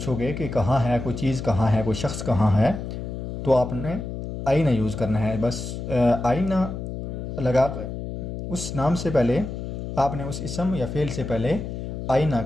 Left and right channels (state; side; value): noise; left; hum, 6 dB below the sound